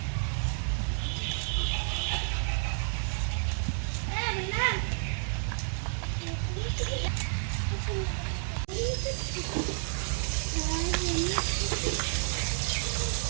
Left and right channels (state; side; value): silent; left; digital silence